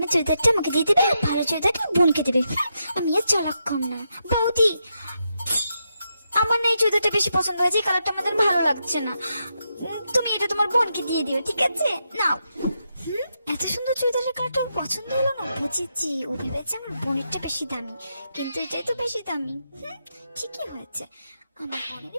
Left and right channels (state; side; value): inverted; both; correlation -0.83